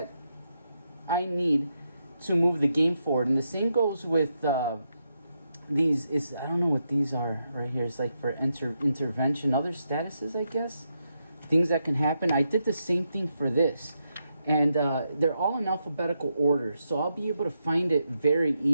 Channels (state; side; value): inverted; both; correlation -0.83